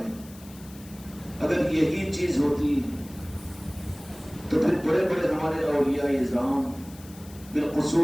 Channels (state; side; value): noise; left; hiss, 21 dB below the sound